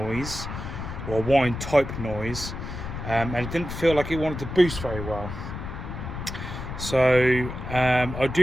or whine type noise, and it didn't feel like it wanted to boost very well. So I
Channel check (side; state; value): left; noise; rumble, 7 dB below the sound